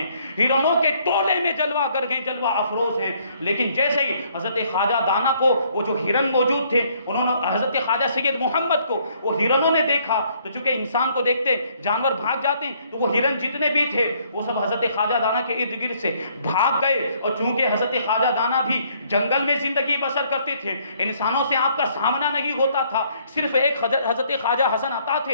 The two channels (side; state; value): both; inverted; correlation -0.66